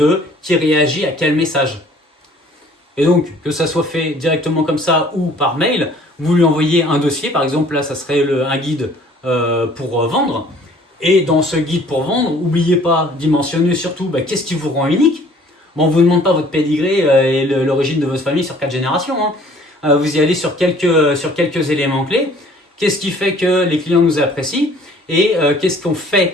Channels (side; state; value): both; normal; correlation 0.55